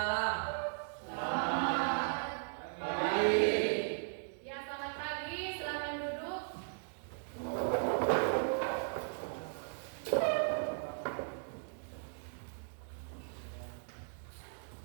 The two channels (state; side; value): silent; left; digital silence